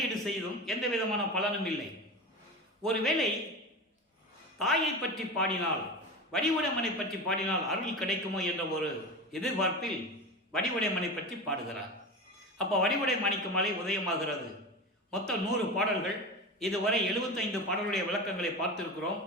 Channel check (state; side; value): normal; both; correlation 0.26